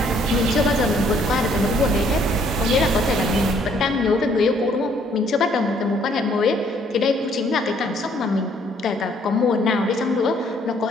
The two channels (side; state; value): both; normal; correlation 0.64